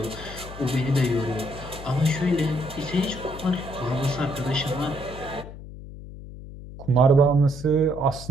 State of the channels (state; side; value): noise; left; hum, 13 dB below the sound